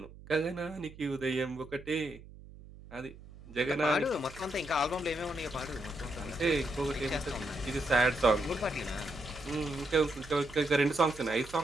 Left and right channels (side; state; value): right; noise; hum, 18 dB below the sound